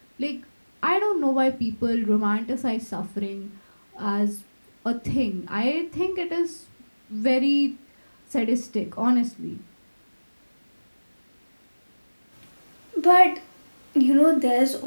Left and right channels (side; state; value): both; inverted; correlation -1.00